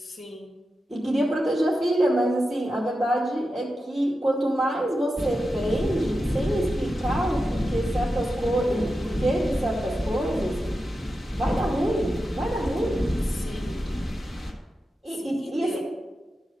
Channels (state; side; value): normal; both; correlation 0.90